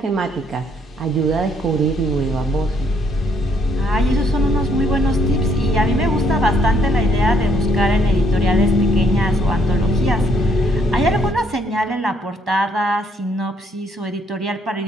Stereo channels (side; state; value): both; normal; correlation 0.68